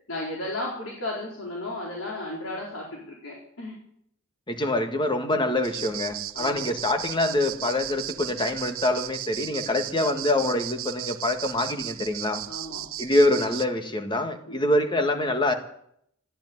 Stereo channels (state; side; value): normal; both; correlation 0.40